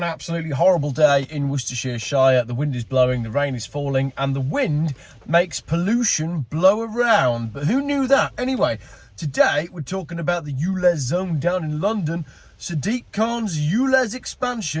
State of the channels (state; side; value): identical; both; correlation 1.00